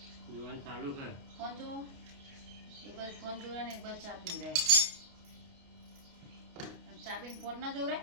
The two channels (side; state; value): left; late; 29 ms